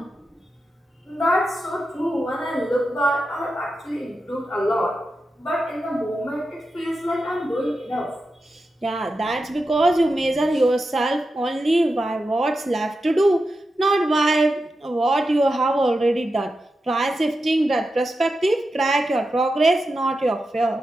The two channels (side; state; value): both; normal; correlation 0.90